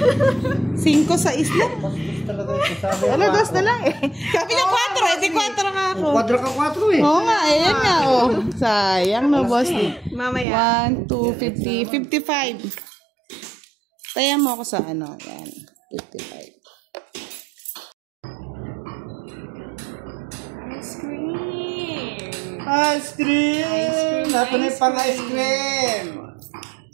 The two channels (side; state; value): left; drops out; at 10.5 s